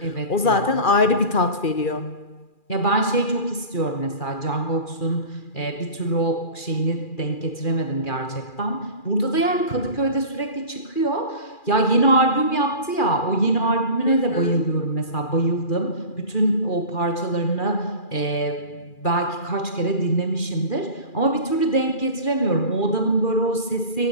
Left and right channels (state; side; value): late; right; 2.4 ms